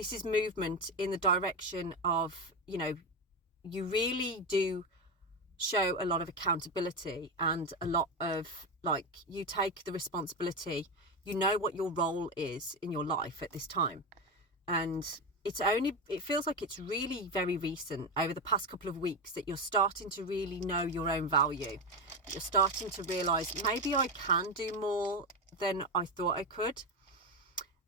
is movement in the direction of, you know, you really do show a lot of accountability and a lot of, like, you take the responsibility, you know what your role is in your life at this time. And it feels like it's really very recent, over the past couple of weeks, that you're starting to really know your own value. You're starting to realize, maybe I can do more than I thought I could.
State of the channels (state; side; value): normal; both; correlation 0.15